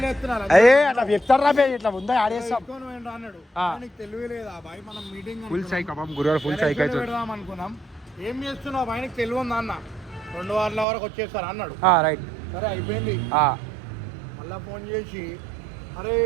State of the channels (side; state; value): left; drops out; at 10.9 s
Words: చెప్తున్నా అట్లా చెప్తారా ఇట్లా ఉందా ఆడేస్తాం అన్నాడు నీకు తెలివి లేదా బాయ్ మనం మీటింగ్ ఫుల్ సైక్ గురువారు ఫుల్ సైక్ అయితే పెడదాం అనుకున్నాం ఏం చేస్తున్నావు బాయ్ నీకు తెలివి ఉందా అన్న 2 వారాల వరకు వచ్చేస్తారు అన్నాడు రైట్ సరే అయిపోయింది మళ్ళా ఫోన్ చేసి అరే